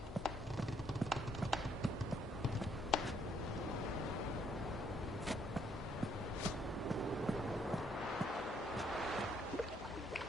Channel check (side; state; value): both; normal; correlation 0.69